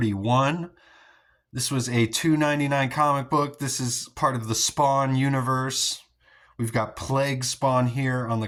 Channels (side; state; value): both; identical; correlation 1.00